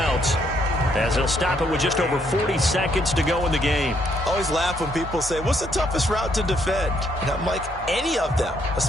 as they'll stop it with just over 40 seconds to go in the game. I always laugh when people say, what's the toughest route to defend? And I'm like, any of them,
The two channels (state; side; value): normal; both; correlation 0.71